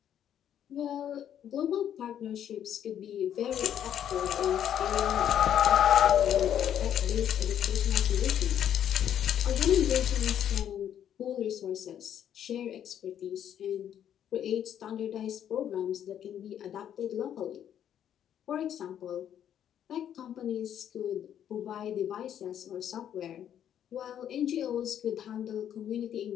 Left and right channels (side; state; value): right; quieter; 9.9 dB